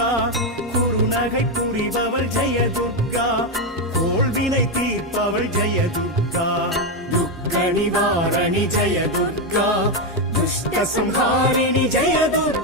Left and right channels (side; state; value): both; normal; correlation 0.06